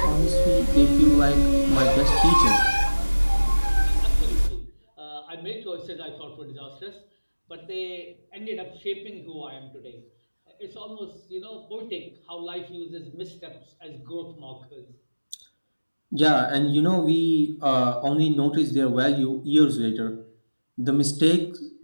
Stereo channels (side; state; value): both; inverted; correlation -1.00